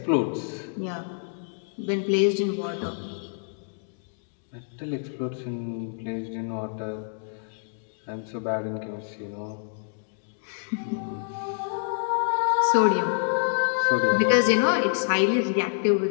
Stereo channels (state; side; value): silent; right; digital silence